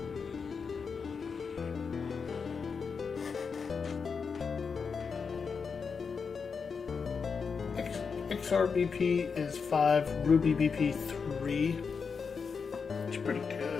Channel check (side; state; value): right; quieter; 5.6 dB